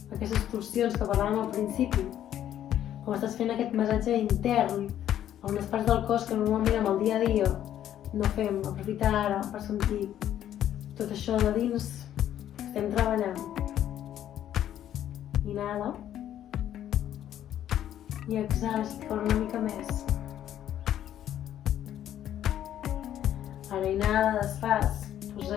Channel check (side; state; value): right; quieter; 11.2 dB